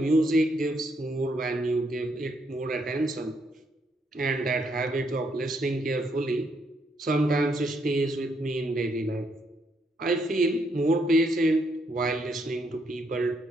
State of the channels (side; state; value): both; normal; correlation 0.75